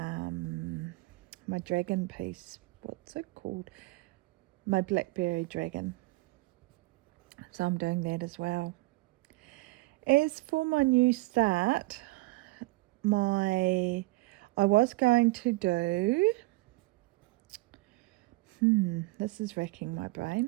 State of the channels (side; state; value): left; quieter; 21.6 dB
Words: my dragon piece. What's it called? My blackberry dragon. So I'm doing that as well. As for my new start, I was going to do this is racking my